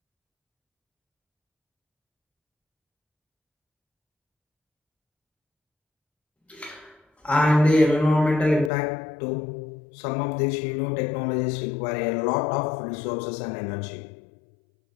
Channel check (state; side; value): drops out; right; at 8.7 s